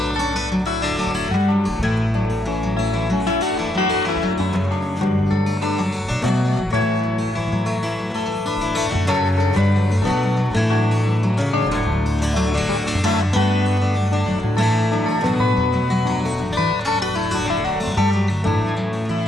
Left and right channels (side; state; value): both; normal; correlation 0.80